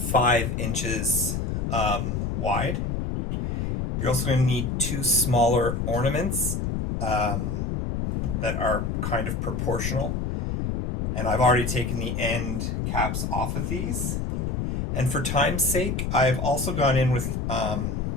inches wide. You're also going to need 2 smaller ornaments that are kind of proportional. And I've already taken the end caps off of these. And for time's sake, I've also gone in with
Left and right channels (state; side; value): noise; left; rumble, 1 dB below the sound